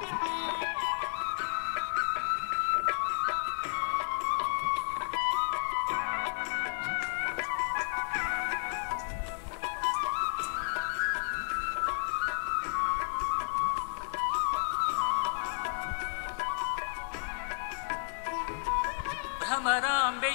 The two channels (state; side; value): silent; right; digital silence